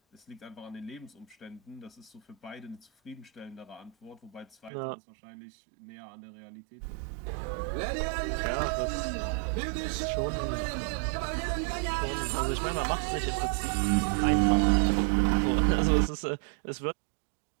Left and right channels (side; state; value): left; drops out; at 4.7 s